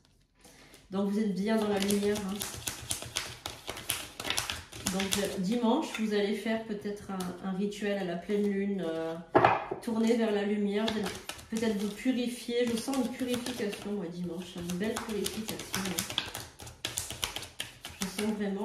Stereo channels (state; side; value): identical; both; correlation 1.00